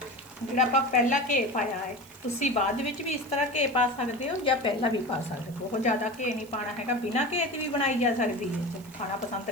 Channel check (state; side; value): noise; right; hiss, 23 dB below the sound